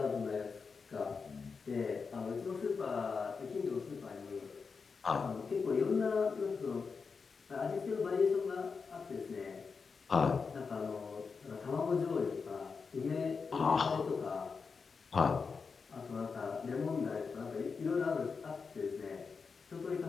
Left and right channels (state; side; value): quieter; right; 5.1 dB